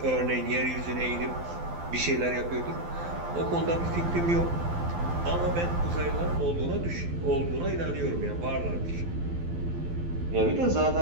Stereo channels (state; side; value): late; left; 12 ms